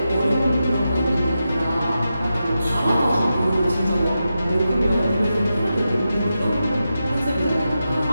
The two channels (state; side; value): inverted; both; correlation -0.90